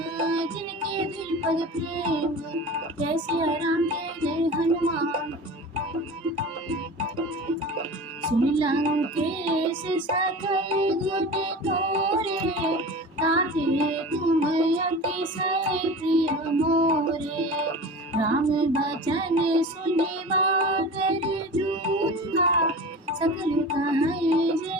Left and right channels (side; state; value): both; normal; correlation 0.34